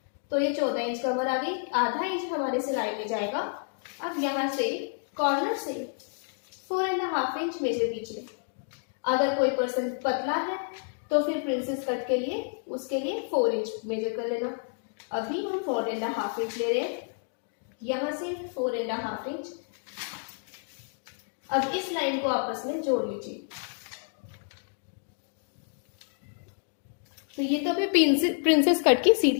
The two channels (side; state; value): right; silent; 58 dB below the other